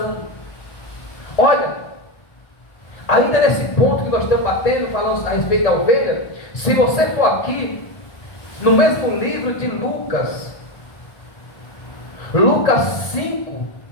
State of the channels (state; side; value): late; right; 1.7 ms